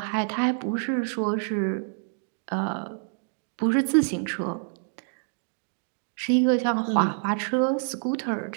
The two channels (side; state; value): left; silent; digital silence